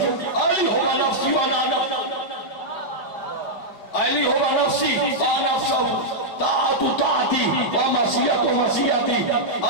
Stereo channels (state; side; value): late; right; 4.9 ms